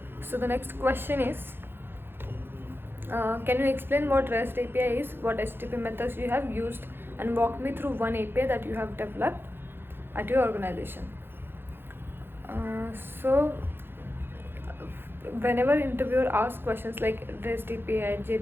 so the next question is, can you explain what REST API is, what HTTP methods you have used, and walk me through one API that you have developed at your organization. So whenever interviewer asks questions like REST API,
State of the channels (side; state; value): left; late; 0.10 ms